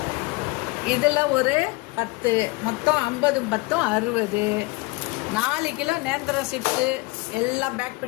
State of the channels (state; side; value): quieter; right; 23.7 dB